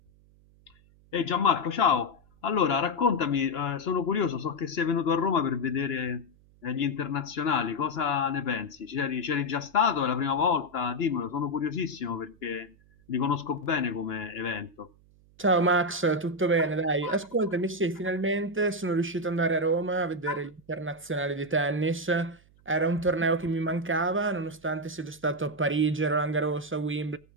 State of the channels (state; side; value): noise; right; hum, 29 dB below the sound